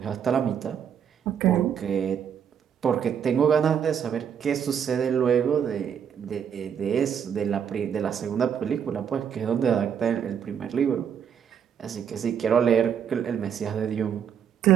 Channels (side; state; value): left; quieter; 8.1 dB